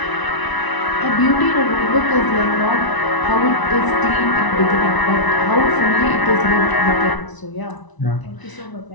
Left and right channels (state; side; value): late; right; 1.0 ms